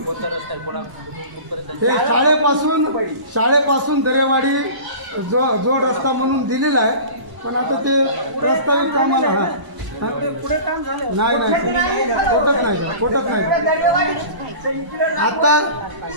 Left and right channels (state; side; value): late; left; 1.0 ms